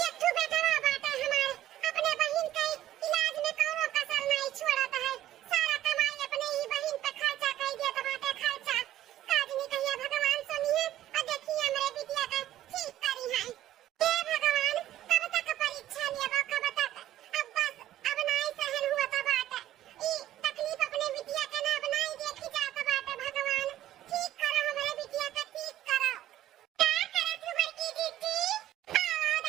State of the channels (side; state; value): left; quieter; 13.2 dB